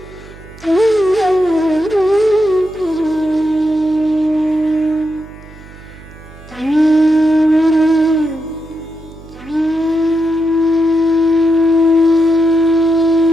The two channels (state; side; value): noise; right; hum, 20 dB below the sound